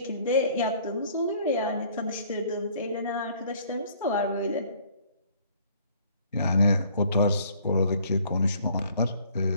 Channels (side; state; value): both; inverted; correlation -0.58